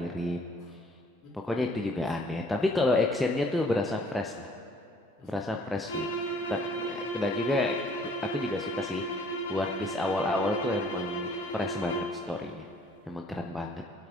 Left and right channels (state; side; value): normal; both; correlation 0.58